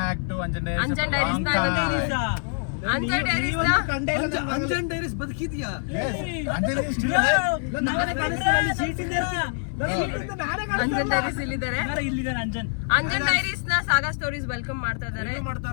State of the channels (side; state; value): right; silent; 61 dB below the other